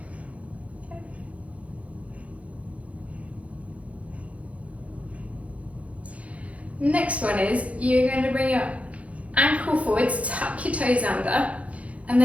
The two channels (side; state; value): left; late; 0.065 ms